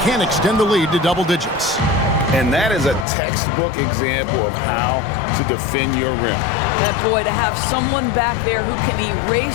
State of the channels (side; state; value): right; drops out; at 3.1 s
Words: can extend the lead to double digits. And that is a textbook example of how to defend your rim. That boy, to have someone back there who can